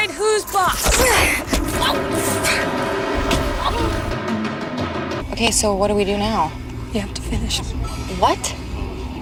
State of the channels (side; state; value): both; identical; correlation 1.00